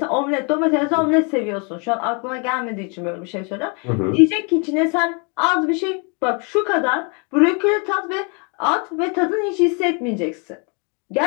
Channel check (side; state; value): right; quieter; 35.0 dB